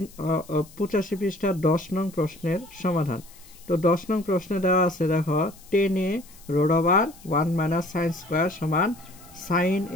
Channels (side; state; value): left; noise; hiss, 23 dB below the sound